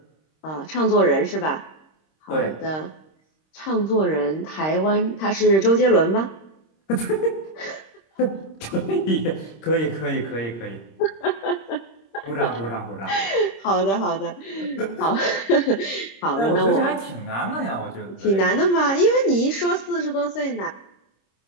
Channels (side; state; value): right; late; 26 ms